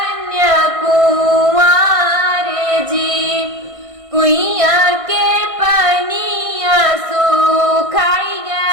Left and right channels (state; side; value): late; left; 1.6 ms